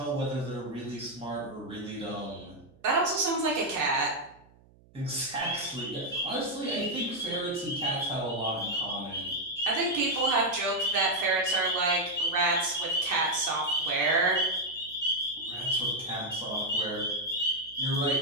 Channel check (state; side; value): noise; right; hum, 28 dB below the sound